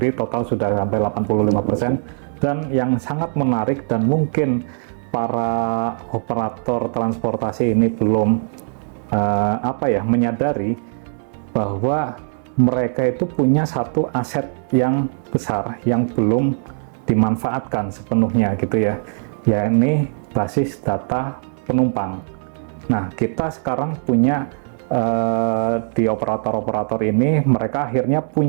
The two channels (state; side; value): silent; left; 63 dB below the other